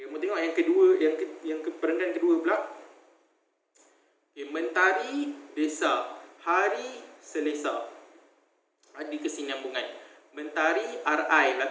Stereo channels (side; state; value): both; identical; correlation 1.00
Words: kamu tengok yang kedua, yang perenggan kedua pula. Okay, mentari desa, hari selesa. Ada kesinambungan. Mentari RI